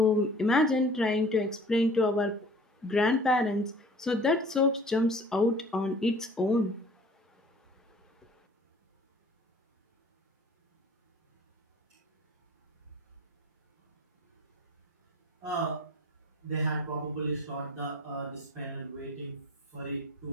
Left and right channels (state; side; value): normal; both; correlation 0.47